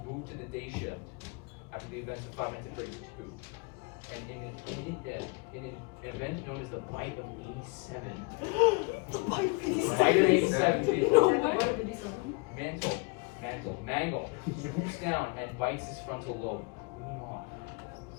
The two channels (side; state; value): right; quieter; 29.4 dB